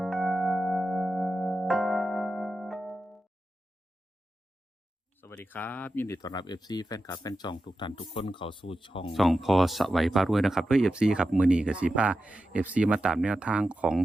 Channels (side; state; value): both; normal; correlation 0.91